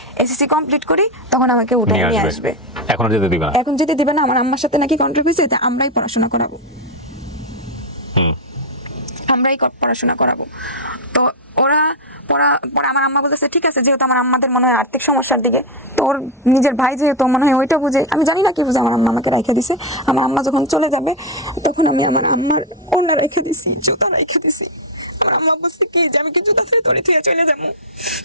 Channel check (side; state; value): both; normal; correlation 0.03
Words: এসএসসি কমপ্লিট করি তখন আমাকে উঠে নিয়ে আসবে। এখন যেতে দিবে না, আমার আম্মার সাথে নাকি কন্ট্রাক্ট হয়েছে যে আমরাই পড়াশোনা করাবো। তো ওরা পরে আমার আম্মা বলতেছে ঠিক আছে, যেহেতু আমার আম্মাদের মনে হয় আর্থিক সমস্যার দিকে, তো ওর নিজের ভাই যেহেতু মনে হয় ওইটা বুঝে, আমি জানি না কি বুঝে আমার আম্মা আমাকে রেখে দিছে। আমার আম্মা যখন চলে যাবে তখন আমি আমার আম্মার ওড়না রেখে দিছি, জুতা রেখে দিছি। আমার আম্মা বলছে কি যে আমি কি জুতা ফেলে তোরে থুয়ে চলে যাবো?